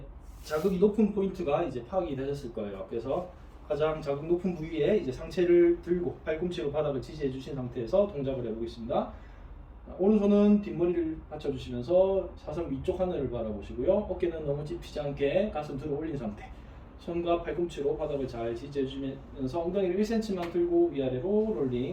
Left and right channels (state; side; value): identical; both; correlation 1.00